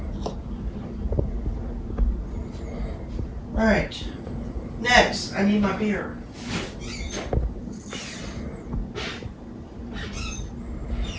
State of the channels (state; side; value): identical; both; correlation 1.00